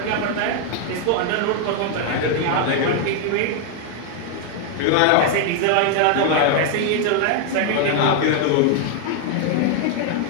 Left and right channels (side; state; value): both; different; correlation 0.00